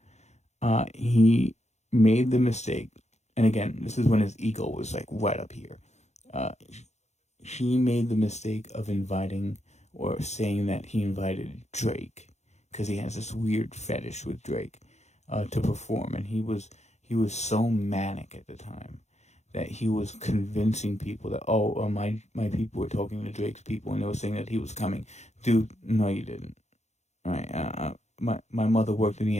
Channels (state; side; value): late; right; 0.33 ms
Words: He made the mistake and again, this is when his ego was like right up here. He made the mistake of inviting or saying that he invited Drake because he has this weird fetish with Drake to perform, and he was so manic at the time that he was convincing people that my people were talking to Drake's people and they were saying that he was coming. Dude, no, you didn't. All right, my mother worked in the